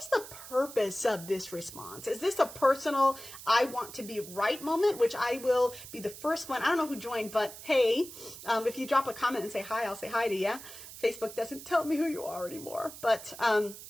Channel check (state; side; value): noise; right; hiss, 14 dB below the sound